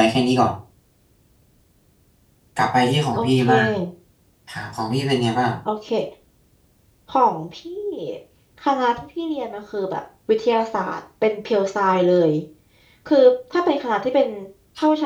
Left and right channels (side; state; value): both; identical; correlation 1.00